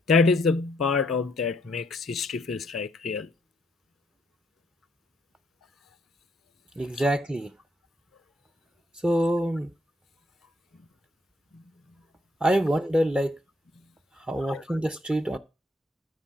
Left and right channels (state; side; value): normal; both; correlation 0.71